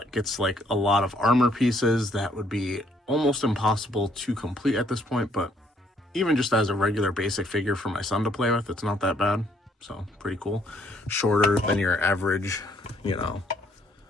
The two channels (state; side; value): normal; both; correlation 0.67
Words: gets like a lot of armor pieces that would be almost impossible to complete at this point, but even just as a regular basic figure for my son to play with, it's not that bad. So pretty cool. Shorter than your average, you know,